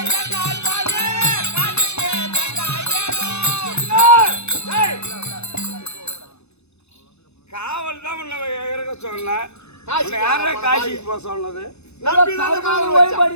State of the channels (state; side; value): late; right; 0.81 ms